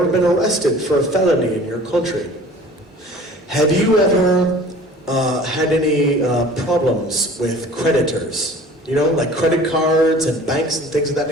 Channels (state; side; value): normal; both; correlation 0.46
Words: been arrested for a felony in your country? Have you ever had any problems with creditors? You know, like credit cards and banks and things of that